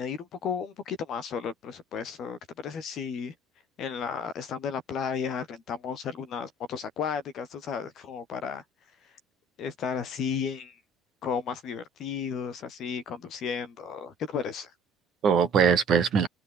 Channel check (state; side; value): normal; both; correlation 0.50